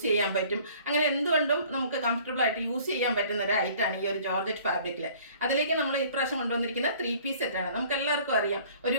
ചെയ്യാൻ പറ്റും. അങ്ങനെ എന്തുകൊണ്ടും നമുക്ക് കംഫർട്ടബിൾ ആയിട്ട് യൂസ് ചെയ്യാൻ പറ്റുന്ന ഒരു ഐറ്റാണ് ഈ ഒരു ജോർജറ്റ് ഫാബ്രിക്കിൽ. അതിലേക്ക് നമ്മൾ ഇപ്രാവശ്യം കൊണ്ടുവന്നിരിക്കുന്ന 3 പീസ് സെറ്റാണ്. നമുക്ക് എല്ലാവർക്കും അറിയാം, ഒരു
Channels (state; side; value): inverted; both; correlation -0.53